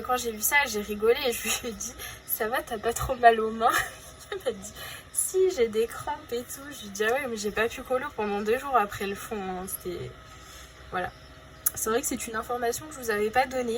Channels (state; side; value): identical; both; correlation 1.00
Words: quand j'ai vu ça, j'ai rigolé et je lui ai dit, ça va, t'as pas trop mal aux mains? Elle m'a dit, si, j'ai des crampes et tout. Je lui ai dit, ah ouais, mais j'ai pas pu colo pendant 2 jours après le fond. Hein. C'était... Voilà. C'est vrai que c'est une information que je vous avais pas